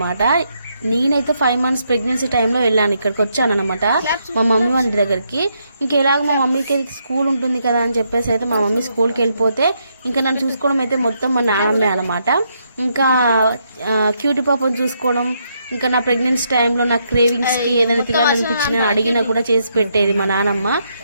నేనైతే 5 months ప్రెగ్నెన్సీ టైంలో వెళ్ళాను, ఇక్కడికి వచ్చాను అనమాట మా మమ్మీ వాళ్ళ దగ్గరికి. ఇంకా ఎలాగ మా మమ్మీకి స్కూల్ ఉంటుంది కదా అని చెప్పేసి అయితే మా మమ్మీ స్కూల్కి వెళ్ళిపోతే ఇంకా నన్ను చూసుకోవడం అయితే మొత్తం మా నానమ్మే అనమాట. ఇంకా క్యూటీ పాపను చూసుకోవడం, ఇంకా నా ప్రెగ్నెన్సీ టైంలో నా క్రేవింగ్స్కి ఏదైనా తినాలనిపించినా అడిగినా కూడా చేసి పెట్టేది మా నానమ్మ.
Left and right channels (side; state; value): both; inverted; correlation -0.77